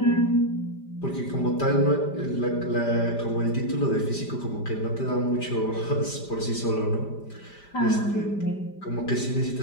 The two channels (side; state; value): right; late; 5.0 ms